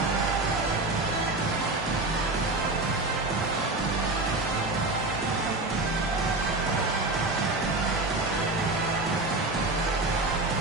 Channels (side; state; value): left; quieter; 3.1 dB